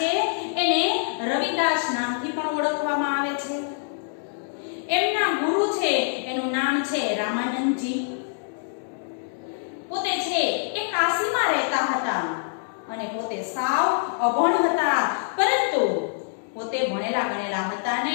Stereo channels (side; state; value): right; silent; digital silence